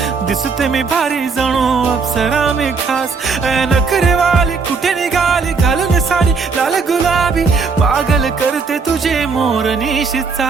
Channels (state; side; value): quieter; left; 4.8 dB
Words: दिसते मी भारी जणू अप्सरा मी खास. नखरेवाली कुठे निघाली घालून साडी लाल गुलाबी, पागल करते तुझे मोरनीशी